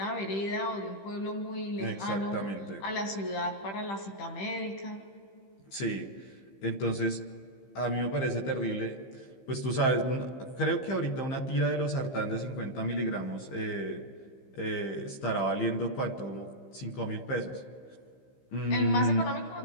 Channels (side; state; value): right; late; 15 ms